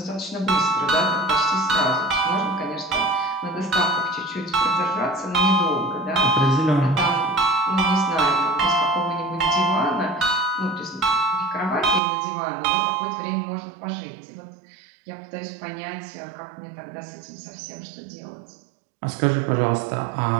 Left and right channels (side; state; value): left; drops out; at 12.0 s